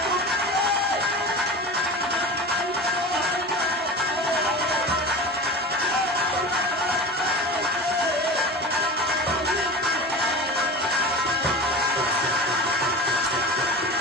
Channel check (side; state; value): both; normal; correlation 0.31